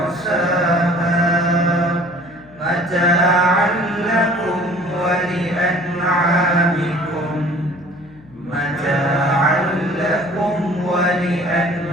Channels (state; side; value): noise; left; hum, 25 dB below the sound